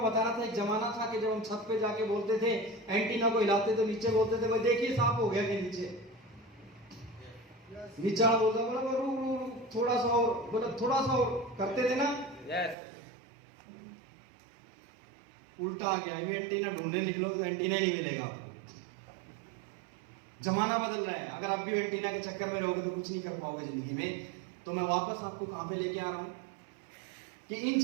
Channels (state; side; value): drops out; left; at 12.8 s